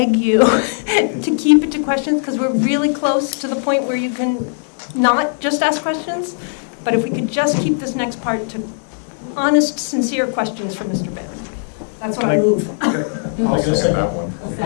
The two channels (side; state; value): right; silent; digital silence